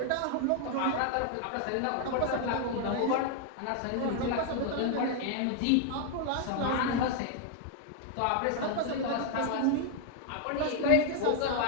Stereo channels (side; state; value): both; different; correlation 0.00